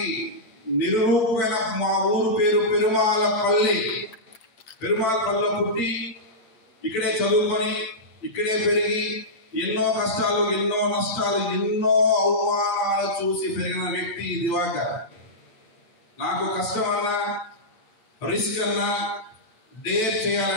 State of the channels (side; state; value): right; late; 8.7 ms